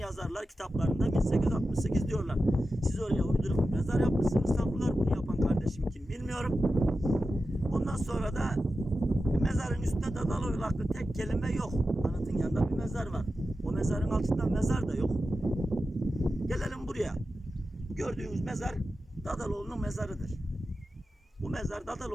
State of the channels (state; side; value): normal; both; correlation 0.92